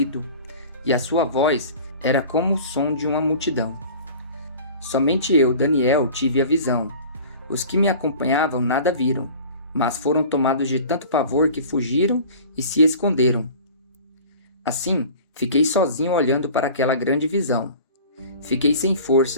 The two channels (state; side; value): inverted; both; correlation -0.42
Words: e a sua voz era como o som de uma multidão. Somente eu, Daniel, tive a visão. Os que me acompanhavam nada viram, mas foram tomados de tanto pavor que fugiram e se esconderam. Assim, fiquei sozinho olhando para aquela grande visão. Fiquei sem